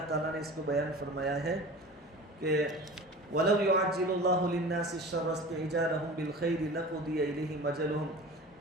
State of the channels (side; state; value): both; normal; correlation 0.37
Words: تعالیٰ نے اس کو بیان فرمایا ہے کہ وَلَوْ يُعَجِّلُ اللَّهُ لِلنَّاسِ الشَّرَّ اسْتِعْجَالَهُم بِالْخَيْرِ لَقُضِيَ إِلَيْهِمْ أَجَلُهُم،